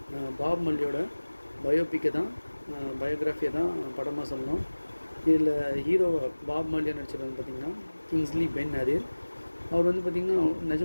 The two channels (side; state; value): both; inverted; correlation -1.00